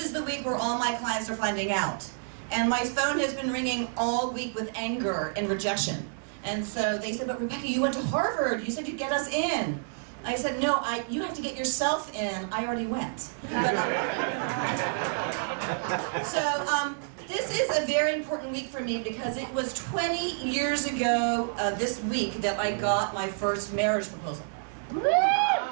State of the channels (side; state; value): left; silent; digital silence